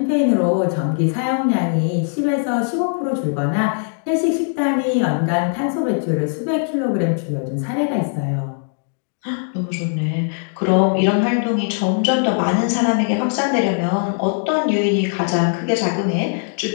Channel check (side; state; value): right; silent; digital silence